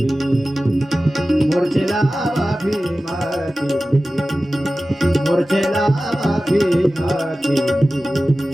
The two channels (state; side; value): normal; both; correlation 0.95